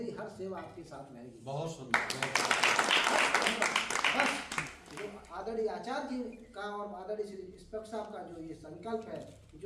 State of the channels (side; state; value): both; identical; correlation 1.00